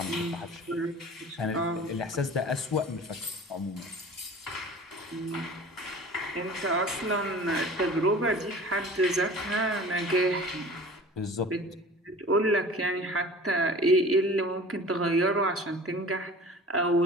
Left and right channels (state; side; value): normal; both; correlation 0.42